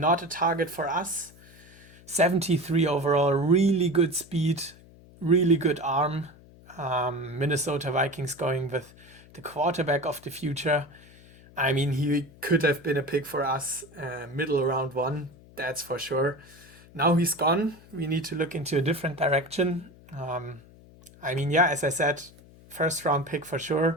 a target for us. 73 overall, really good speed, really good arm. Minnesota Vikings going with the quarterback of the future. I mean, he could have been a pick for us, middle round 1, that's for sure. Now he's gone. We need to look into a different direction. I mean, as I said, first round pick for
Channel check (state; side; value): noise; left; hum, 23 dB below the sound